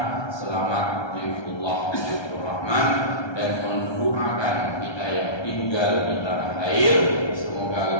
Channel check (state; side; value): late; right; 1.2 ms